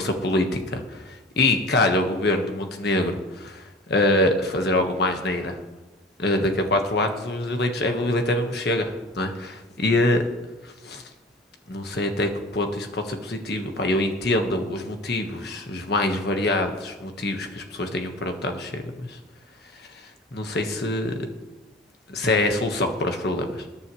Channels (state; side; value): normal; both; correlation 0.39